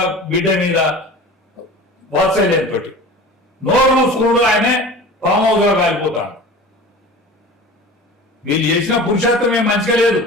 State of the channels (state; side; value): normal; both; correlation 0.38